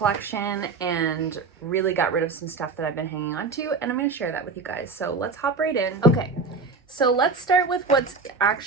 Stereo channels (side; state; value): left; quieter; 4.1 dB